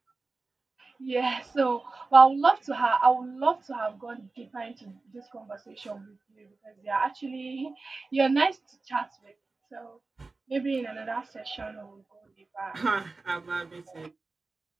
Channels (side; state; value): left; quieter; 3.7 dB